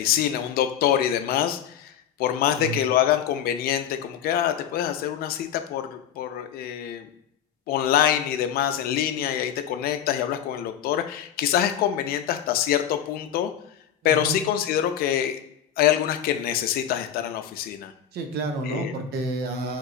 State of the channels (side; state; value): right; quieter; 9.2 dB